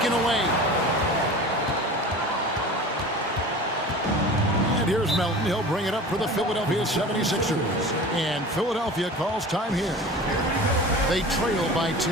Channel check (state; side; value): normal; both; correlation 0.37